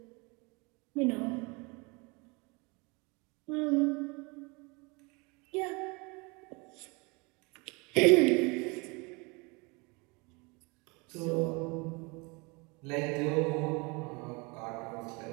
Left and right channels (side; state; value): left; quieter; 28.4 dB